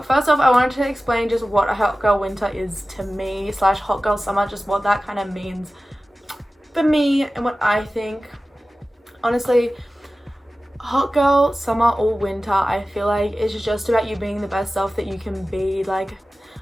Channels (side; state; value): both; normal; correlation 0.96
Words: first off, I wanted to explain just what a hot girl winter is to me / hot girl summer, just what that kind of means for me and what I think. Honestly, hot girl summer or winter, I feel like it's just about you being the best self that you can be. Like,